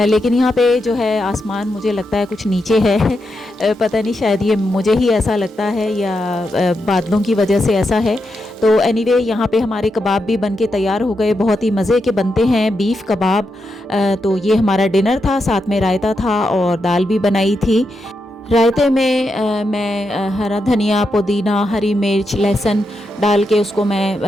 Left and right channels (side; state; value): both; normal; correlation 0.85